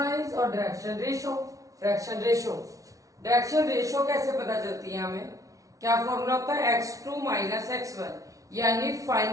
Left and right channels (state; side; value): late; left; 0.17 ms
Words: और डायरेक्शन रेशो। डायरेक्शन रेशो कैसे पता चलती है हमें? क्या फॉर्मूला होता है? x2 माइनस x1, यानी